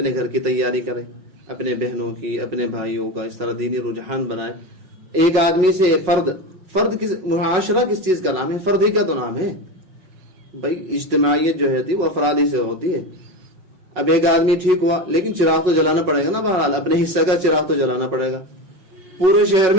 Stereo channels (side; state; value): left; late; 5.4 ms